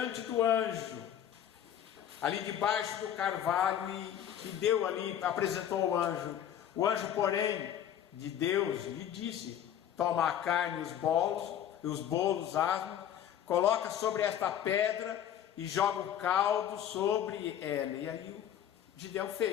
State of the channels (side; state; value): right; quieter; 10.1 dB